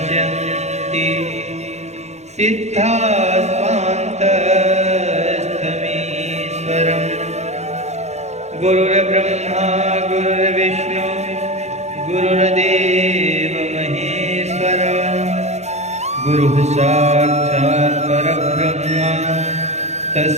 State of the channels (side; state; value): left; late; 0.32 ms